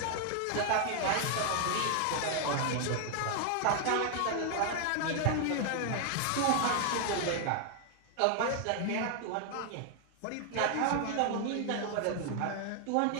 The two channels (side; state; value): both; different; correlation 0.00